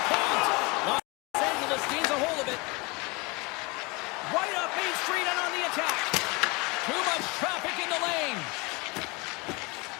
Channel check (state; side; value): quieter; right; 27.2 dB